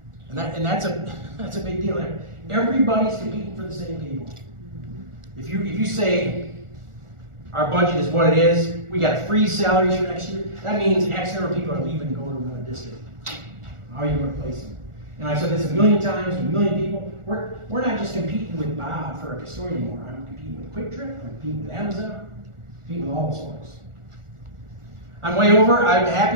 And that's a big deal. Everybody's competing for the same people. If you say our budget is what it is, we got to freeze salaries for next year, that means X number of people are leaving to go to another district. How are you going to replace them? And I've said this a million times with a million people. We're not just competing with Bob for a custodian anymore. I'm competing with Quick Trip, I'm competing with Amazon, I'm competing with all those folks. I'm way over. I'm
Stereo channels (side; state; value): left; late; 1.4 ms